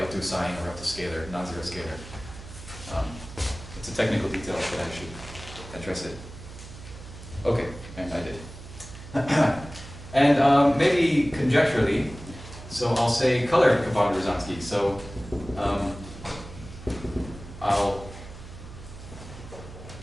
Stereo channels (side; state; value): right; noise; hum, 14 dB below the sound